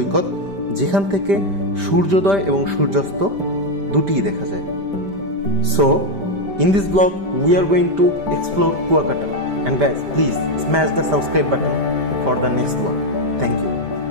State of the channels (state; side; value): late; left; 5.1 ms